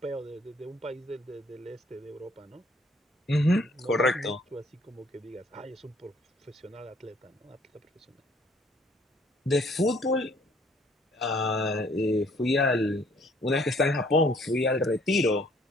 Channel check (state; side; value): normal; both; correlation 0.61